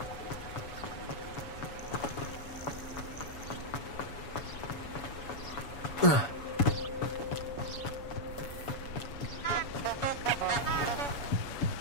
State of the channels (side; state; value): right; late; 7.1 ms